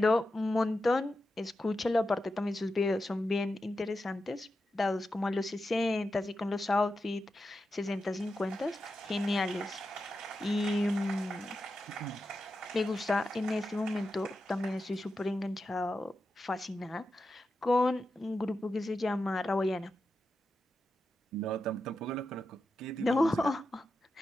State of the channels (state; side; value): normal; both; correlation 0.89